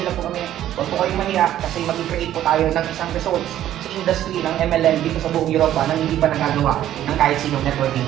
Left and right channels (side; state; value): left; quieter; 12.1 dB